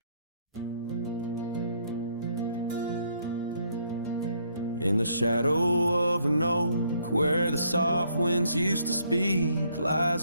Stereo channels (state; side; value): inverted; both; correlation -0.70